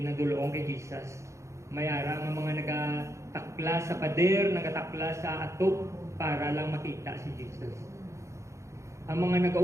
kay Jesus. Mayara ang mga nagatakla sa pader, nagatakla sa atop para lang makita si Jesus. Ang mga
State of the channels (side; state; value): left; late; 0.14 ms